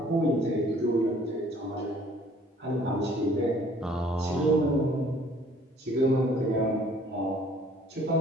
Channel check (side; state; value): both; normal; correlation 0.57